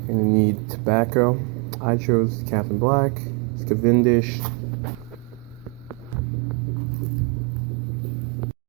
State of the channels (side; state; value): left; quieter; 26.8 dB